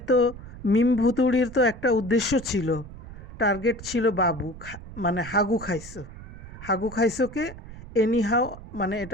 মিম ভুতুড়ির তো একটা উদ্দেশ্য ছিল, টার্গেট ছিল বাবু, মানে হাগু খাইছোকে এনিহাও মানে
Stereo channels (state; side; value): noise; right; rumble, 15 dB below the sound